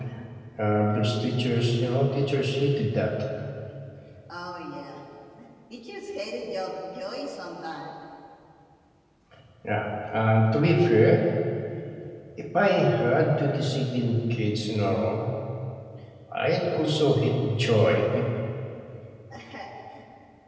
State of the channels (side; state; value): both; identical; correlation 1.00